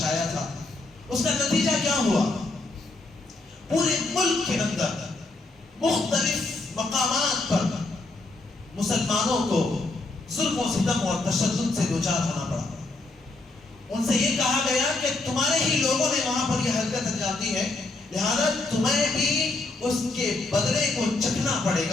آیا تھا اس کا نتیجہ کیا ہوا؟ پورے ملک کے اندر مختلف مقامات پر مسلمانوں کو ظلم و ستم اور تشدد سے دوچار ہونا پڑا۔ ان سے یہ کہا گیا کہ تمہارے ہی لوگوں نے وہاں پر یہ حرکت انجام دی ہے، لہذا تمہیں بھی اس کے بدلے کو چکھنا پڑے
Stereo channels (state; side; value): quieter; right; 3.1 dB